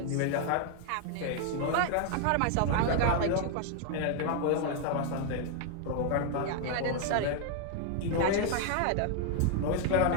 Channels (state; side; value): different; both; correlation 0.00